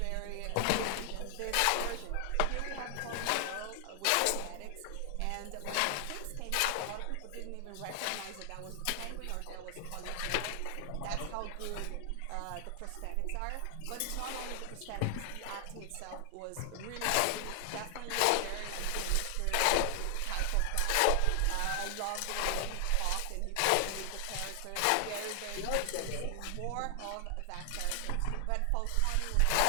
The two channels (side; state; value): both; different; correlation 0.00